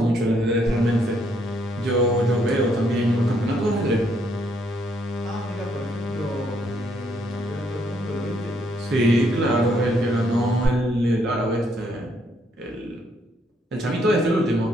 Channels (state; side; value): normal; both; correlation 0.71